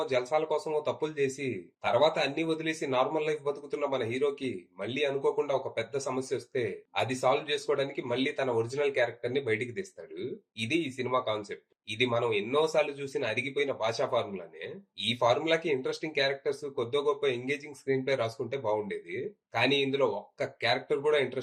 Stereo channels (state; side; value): identical; both; correlation 1.00